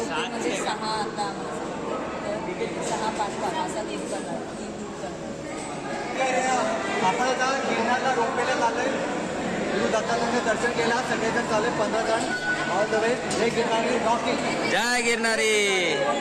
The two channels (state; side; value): identical; both; correlation 1.00